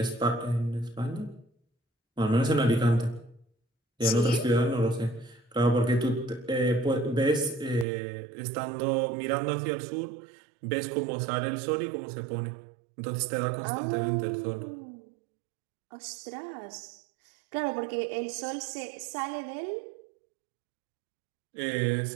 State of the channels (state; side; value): drops out; left; at 7.9 s